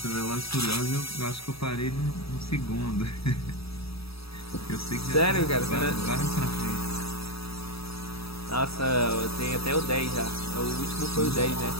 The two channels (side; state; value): right; late; 0.77 ms